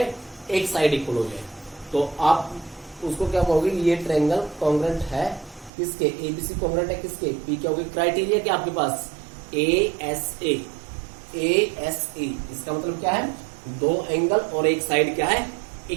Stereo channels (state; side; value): drops out; left; at 5.7 s